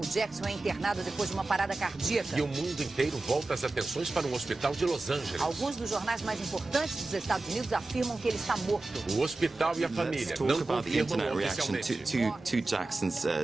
Jackson é internado depois de uma parada cardíaca. E o mundo inteiro volta as atenções para um hospital de Los Angeles. Alguns dos jornais mais importantes dos Estados Unidos afirmam que ele está morto. O hospital e a família não confirmam oficialmente. To Jackson's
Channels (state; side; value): quieter; left; 3.2 dB